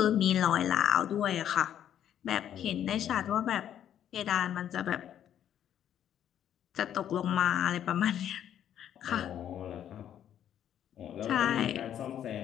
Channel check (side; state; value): right; quieter; 10.3 dB